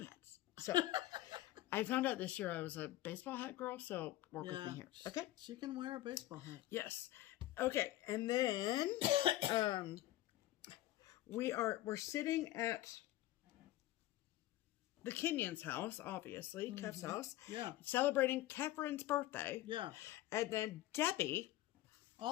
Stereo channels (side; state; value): right; quieter; 15.6 dB